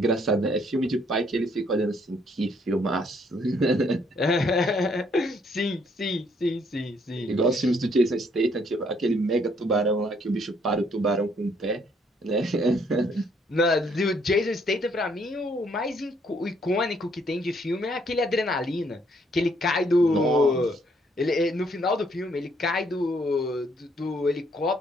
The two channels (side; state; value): both; normal; correlation 0.68